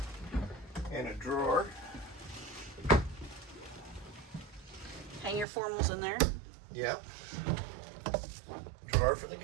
And a drawer. Hang your formals in there. Yep. Drawer for the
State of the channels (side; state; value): left; drops out; at 5.5 s